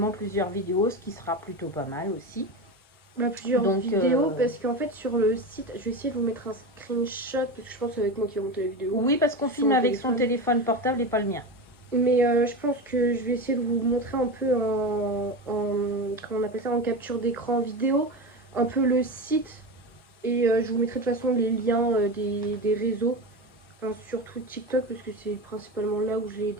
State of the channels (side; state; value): both; normal; correlation 0.22